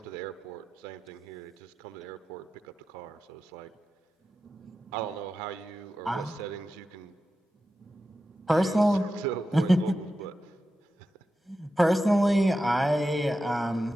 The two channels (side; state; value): both; normal; correlation 0.91